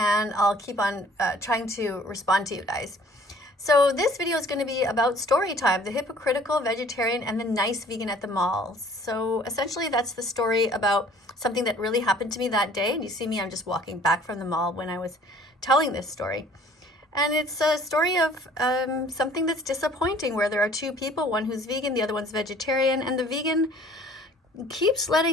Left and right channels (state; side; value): normal; both; correlation 0.53